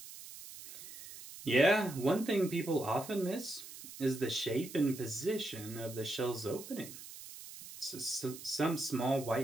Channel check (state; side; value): noise; right; hiss, 14 dB below the sound